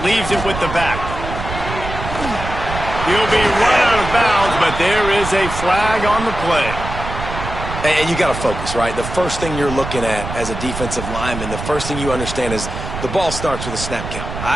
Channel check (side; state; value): right; noise; rumble, 7 dB below the sound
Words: Leaves it with the back. He'll be run out of bounds, but there is a flag on the play. And you got to focus, right? The first thing you're looking at as a defensive lineman, the first thing you understand is the ball starts with a snap count.